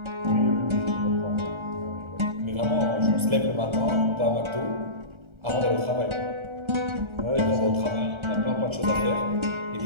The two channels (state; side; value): late; left; 1.3 ms